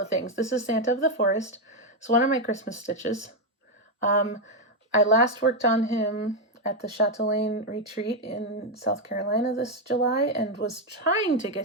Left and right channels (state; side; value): normal; both; correlation 0.04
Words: things. This is Santa of the Forest. It's one of my Christmas stitches. I last worked on him at the Chatelaine retreat in South Carolina this July, and was trying to